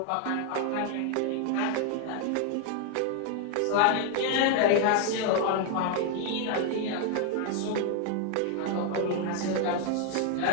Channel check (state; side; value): different; both; correlation 0.00